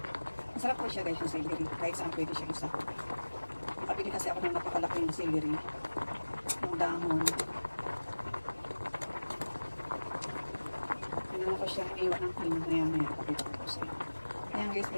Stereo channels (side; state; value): both; inverted; correlation -1.00